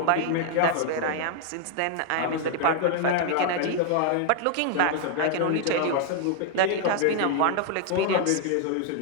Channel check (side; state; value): both; different; correlation 0.00